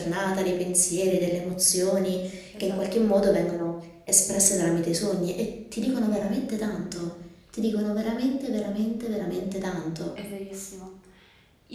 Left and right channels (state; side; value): identical; both; correlation 1.00